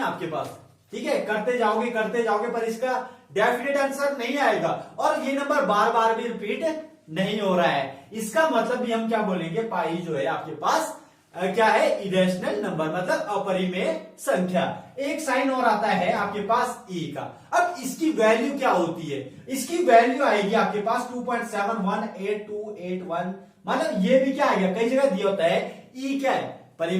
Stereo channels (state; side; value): identical; both; correlation 1.00